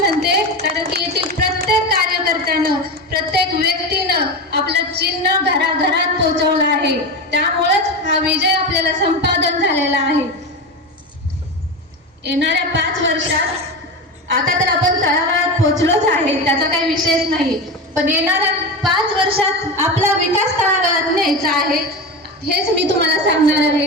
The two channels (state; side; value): normal; both; correlation 0.22